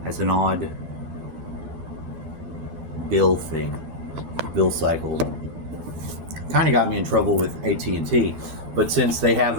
has an odd bill cycle. Kind of got me in trouble with AT&T, but since they have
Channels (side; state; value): left; late; 12 ms